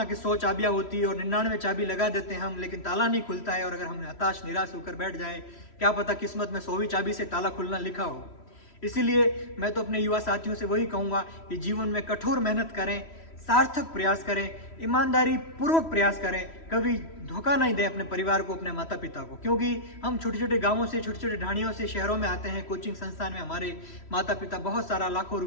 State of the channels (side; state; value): right; late; 3.1 ms